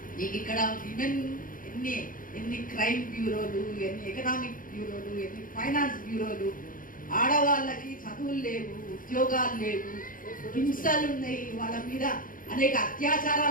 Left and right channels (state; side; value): late; right; 0.40 ms